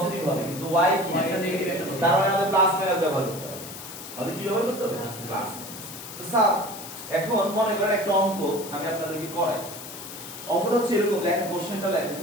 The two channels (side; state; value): left; noise; hiss, 12 dB below the sound